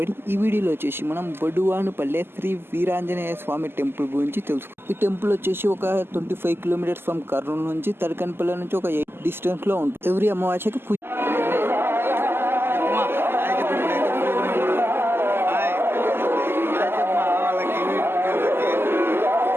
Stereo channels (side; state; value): left; late; 0.11 ms